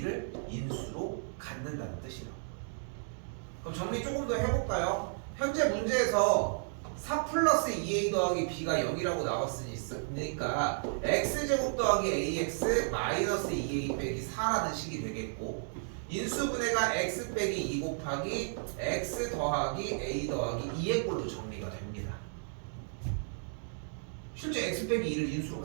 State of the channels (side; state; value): left; silent; digital silence